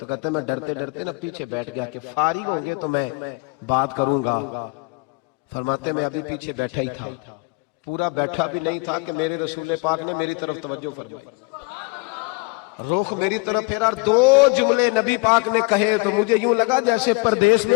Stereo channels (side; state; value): right; quieter; 29.1 dB